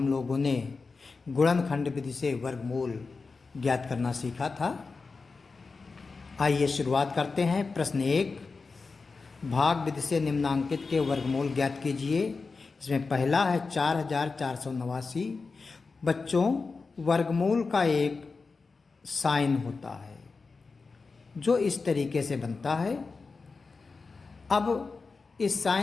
लोगों ने गुणनखंड विधि से वर्गमूल ज्ञात करना सीखा था। आइए शुरुआत करते हैं। प्रश्न 1, भाग विधि से निम्नांकित के वर्गमूल ज्ञात कीजिए। इसमें पहला है 4489। बच्चों, वर्गमूल का एक साइन होता है जो इस तरीके से बनता है। अब इस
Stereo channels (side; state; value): right; quieter; 4.3 dB